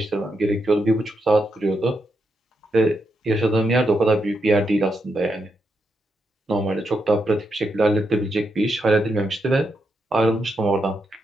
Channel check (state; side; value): normal; both; correlation 0.83